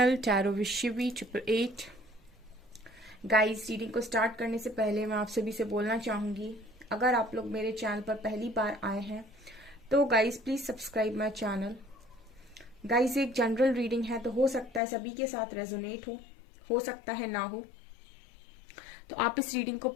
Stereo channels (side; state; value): right; drops out; at 14.8 s